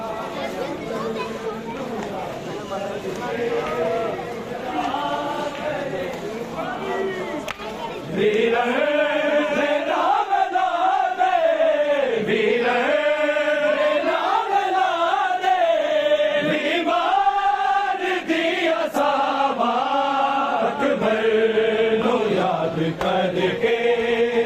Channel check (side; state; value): both; identical; correlation 1.00